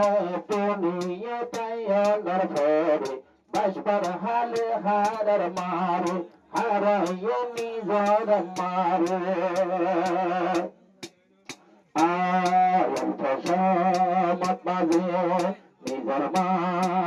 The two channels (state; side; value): identical; both; correlation 1.00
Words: দুনিয়া তাইয়ার ফেরে বাসবার হালে হারার মারে হারাইয়ে নিজের মারে মত বাজে নিজের মা